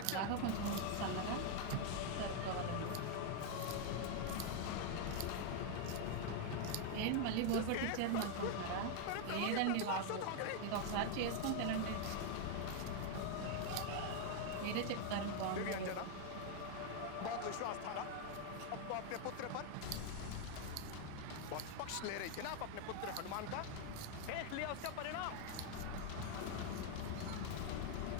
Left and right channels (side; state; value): both; different; correlation 0.01